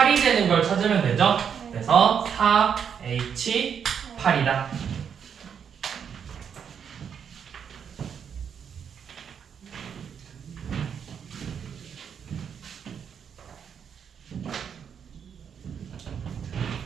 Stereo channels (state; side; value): quieter; left; 7.5 dB